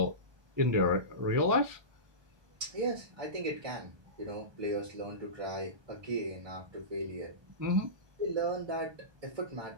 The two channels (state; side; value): late; left; 1.2 ms